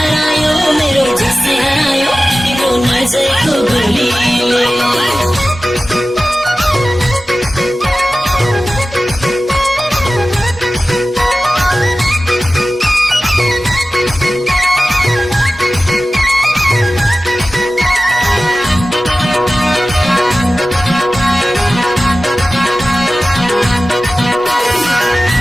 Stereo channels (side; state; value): both; normal; correlation 0.95